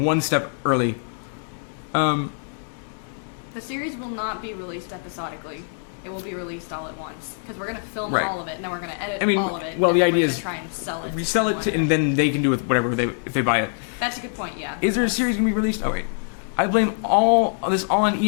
step early. The series will not be released episodically. It will be released all at once because we're going to film right. all of it and then we're going to edit all of it. Well, the idea is try and sell it. Resell it, and then they can do with whatever if they buy it. That's a good point. Yeah. Is there a series going to be released? Oh wait, I blame all on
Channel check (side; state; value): right; silent; 63 dB below the other